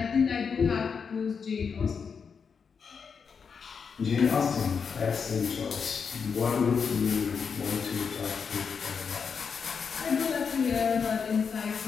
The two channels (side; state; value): right; quieter; 6.0 dB